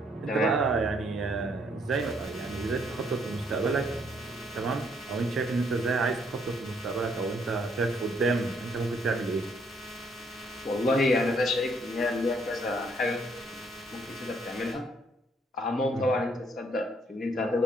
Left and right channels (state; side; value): normal; both; correlation 0.69